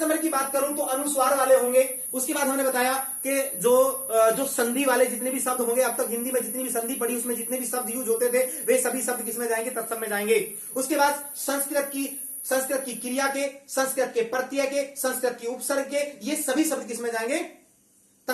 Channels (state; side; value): identical; both; correlation 1.00